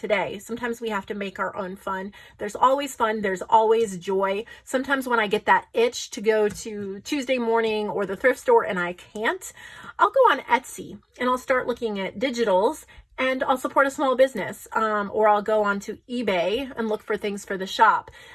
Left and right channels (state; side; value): identical; both; correlation 1.00